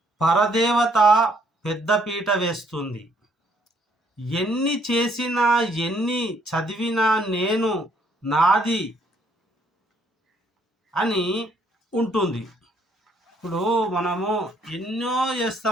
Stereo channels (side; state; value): both; normal; correlation 0.67